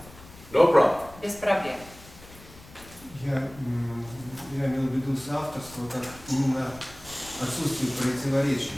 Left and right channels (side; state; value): left; noise; rumble, 20 dB below the sound